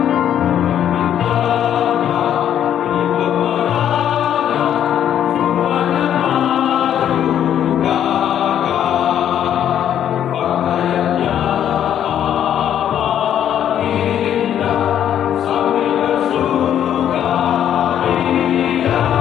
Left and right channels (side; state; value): right; quieter; 10.1 dB